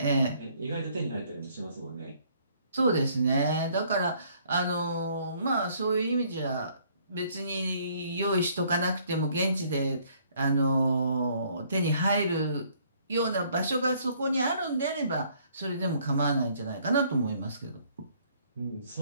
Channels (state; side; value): inverted; both; correlation -0.63